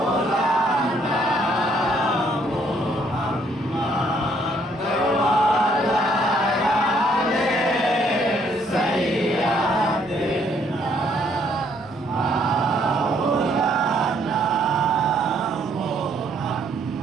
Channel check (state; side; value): normal; both; correlation 0.67